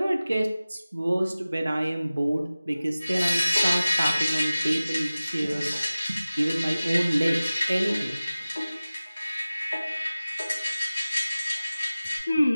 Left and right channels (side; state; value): both; inverted; correlation -0.97